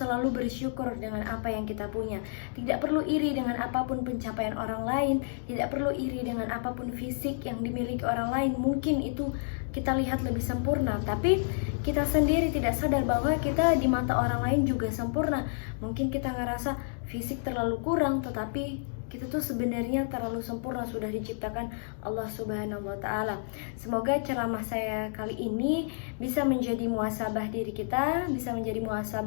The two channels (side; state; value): right; silent; digital silence